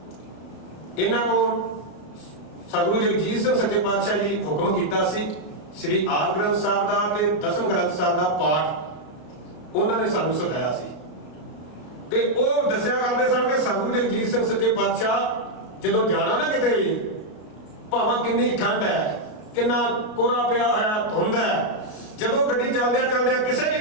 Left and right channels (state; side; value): late; right; 33 ms